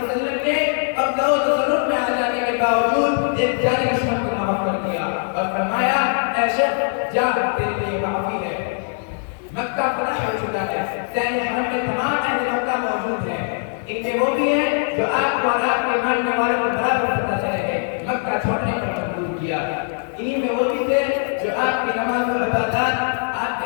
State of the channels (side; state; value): right; silent; 57 dB below the other